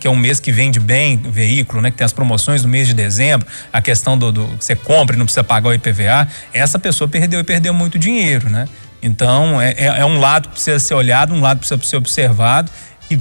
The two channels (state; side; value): inverted; both; correlation -1.00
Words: é um mês que vende bem o veículo, né, que tem as promoções no mês de dezembro, a questão do que você compra e não precisa pagar o IPVA, essa pessoa perdeu muito dinheiro, né? Então, é um lado que precisa ser olhado, um lado que precisa ser observado, e